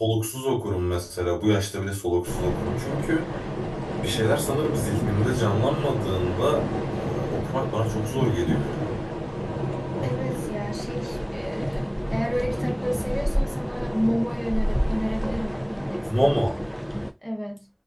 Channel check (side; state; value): both; identical; correlation 1.00